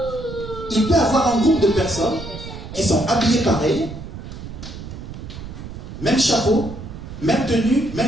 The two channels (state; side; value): noise; right; rumble, 11 dB below the sound